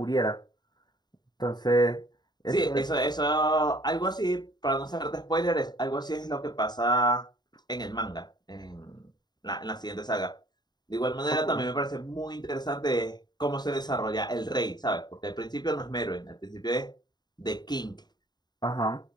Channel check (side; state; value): right; late; 0.20 ms